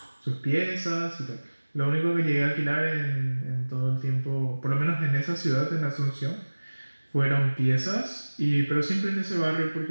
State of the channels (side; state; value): both; inverted; correlation -1.00